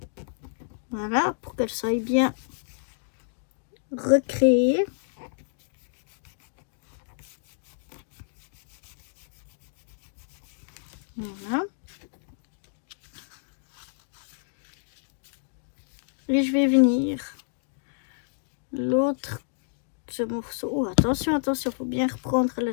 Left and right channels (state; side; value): silent; right; digital silence